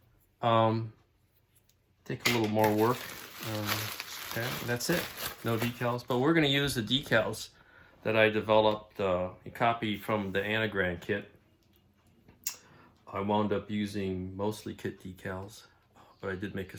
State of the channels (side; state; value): both; identical; correlation 1.00